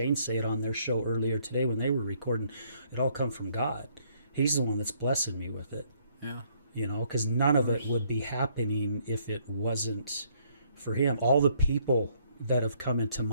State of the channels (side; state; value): both; inverted; correlation -0.68